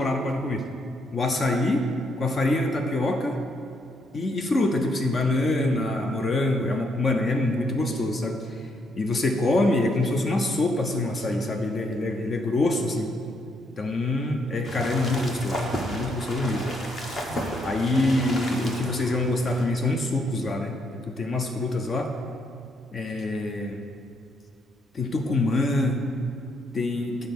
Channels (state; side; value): normal; both; correlation 0.74